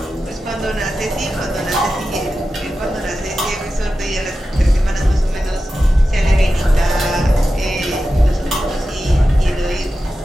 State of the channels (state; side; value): normal; both; correlation 0.92